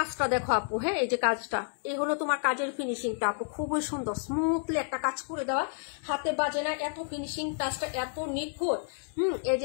দেখো আপু। হ্যাঁ, এই যে কাজটা, এই হলো তোমার কাজের ফিনিশিংটা আপু, খুবই সুন্দর স্মুথলি একটা কাজ করে দেওয়া, হাতে বাজে না, এত ফিনিশিং টাচটা এত নিখুঁত। এই যে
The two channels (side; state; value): right; silent; 58 dB below the other